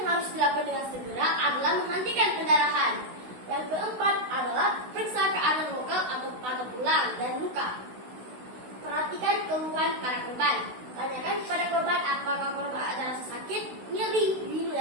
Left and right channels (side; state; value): left; late; 16 ms